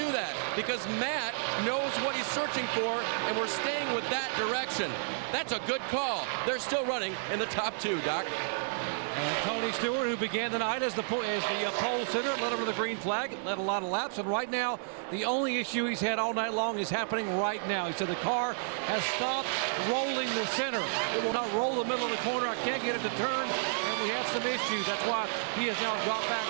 that because Matt knows what he's searching for, and we're staying with that direction. That's a good call. They're still running in the top 2, Doc. And Tony Stewart, who began the night as the pole sitter, led over the green flag, led a lot of laps, and right now the only issue he's had all night long is happening right now. He said the car has stopped rolling the center. It will not roll the middle of the corner. I can't get it to turn, and we have some issues. That's why he has now dropped back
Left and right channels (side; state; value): left; silent; digital silence